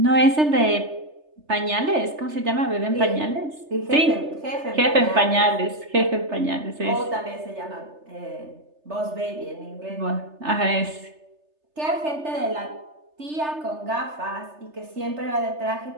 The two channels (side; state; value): left; late; 3.3 ms